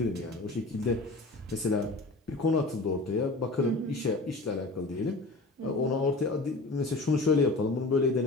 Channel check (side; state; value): right; quieter; 3.1 dB